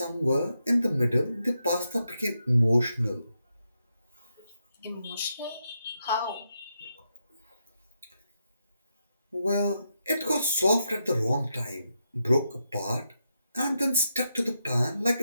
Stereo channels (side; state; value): both; inverted; correlation -0.83